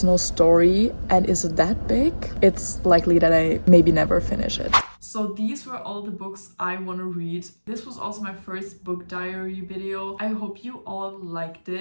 no story and is that big, it's likely that I maybe never finish it. So these were all the books I want to read. This was also my first book diary video. I hope you all liked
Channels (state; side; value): inverted; both; correlation -1.00